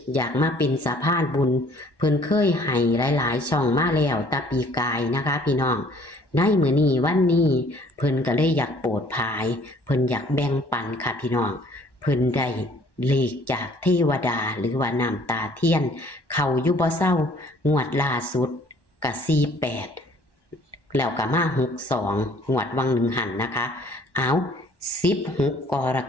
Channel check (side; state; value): right; late; 1.1 ms